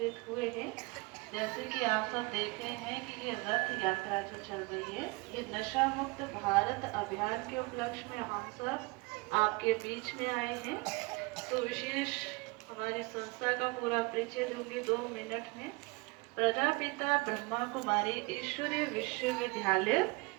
हुए हैं। जैसे कि आप सब देख रहे हैं कि ये रथ यात्रा जो चल रही है, ये नशा मुक्त भारत अभियान के उपलक्ष्य में हम सब आपके बीच में आए हैं। तो विशेष हमारी संस्था का पूरा परिचय दूंगी 2 मिनट में। प्रजापिता ब्रह्मा कुमारी ईश्वरीय विश्वविद्यालय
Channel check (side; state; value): left; quieter; 26.4 dB